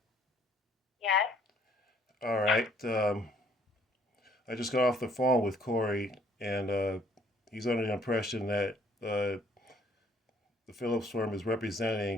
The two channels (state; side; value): normal; both; correlation 0.63